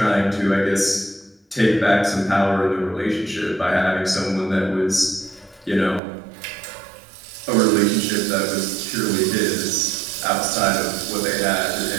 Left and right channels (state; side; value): drops out; left; at 6.0 s